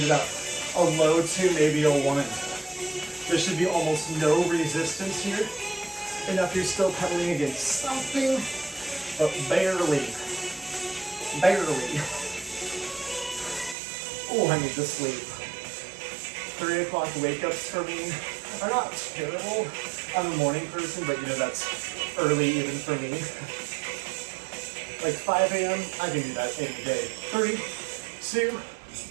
it up. A low 2, maybe a 1. There should be almost no resistance here. Enough you're still pedaling against something, but barely. Barely. Oh, I need to sleep. 3 o'clock wake-ups for me are not terrible. I'm a morning person, but you know, that's early even for me. Like 5 a.m., I can do that any day. 3, 2,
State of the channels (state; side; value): drops out; left; at 13.8 s